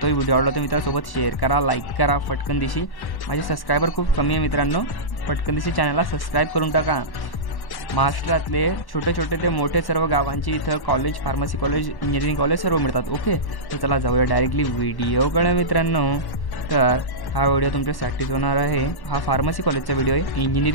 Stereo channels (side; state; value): right; late; 1.1 ms